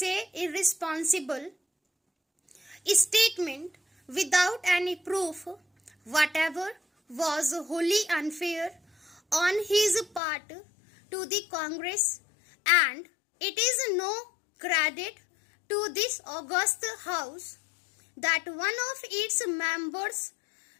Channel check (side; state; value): right; drops out; at 10.2 s